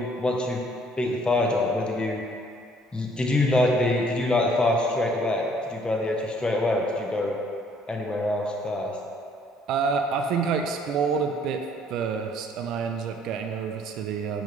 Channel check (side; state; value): both; normal; correlation 0.61